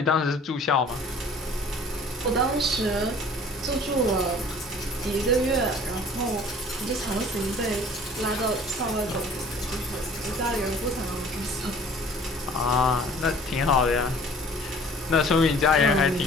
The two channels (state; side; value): normal; both; correlation 0.50